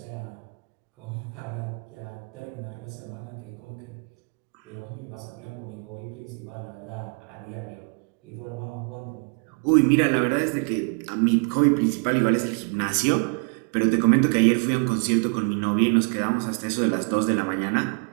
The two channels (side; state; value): left; quieter; 38.0 dB